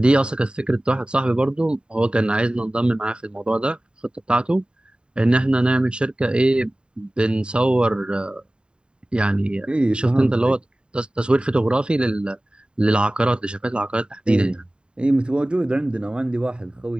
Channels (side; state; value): left; late; 0.050 ms